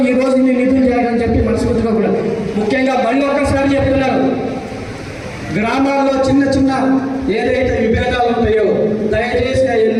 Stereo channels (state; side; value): identical; both; correlation 1.00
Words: ఈ రోజు మీరు నిధులు చేయాలని చెప్పి మనస్ఫూర్తిగా కూడా ముఖ్యంగా మళ్ళీ ఒక్కసారి చెప్తున్నారు, గ్రామాల్లో చిన్న చిన్న ఏదైతే విభేదాలు ఉంటాయో దయచేసి